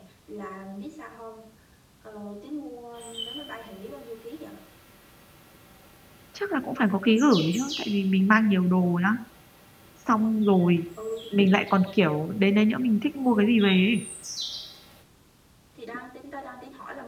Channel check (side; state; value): both; identical; correlation 1.00